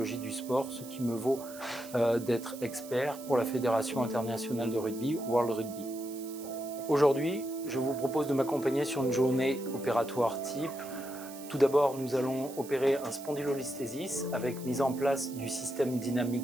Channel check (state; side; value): noise; right; hiss, 16 dB below the sound